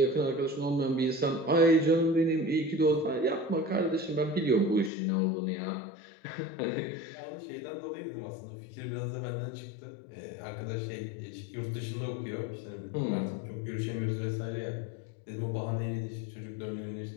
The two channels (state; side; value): drops out; right; at 4.9 s